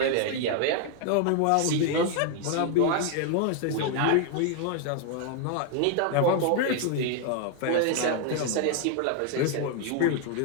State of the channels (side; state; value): both; different; correlation 0.00